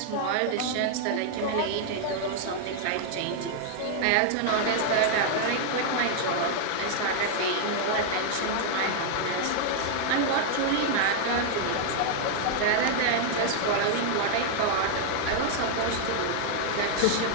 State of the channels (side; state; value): both; different; correlation 0.00